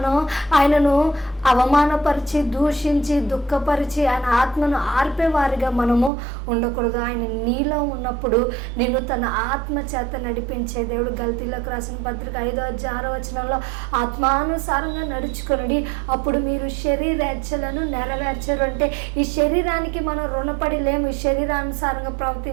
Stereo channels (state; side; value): drops out; left; at 6.1 s